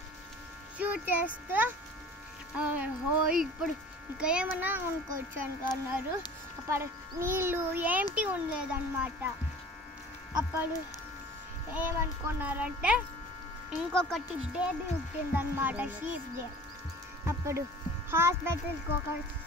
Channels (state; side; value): normal; both; correlation 0.44